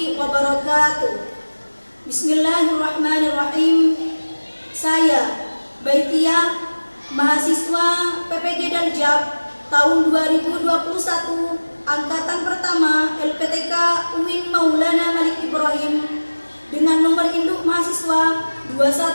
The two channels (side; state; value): both; inverted; correlation -1.00